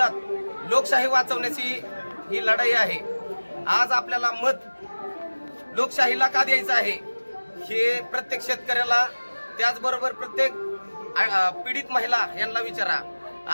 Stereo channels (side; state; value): both; inverted; correlation -1.00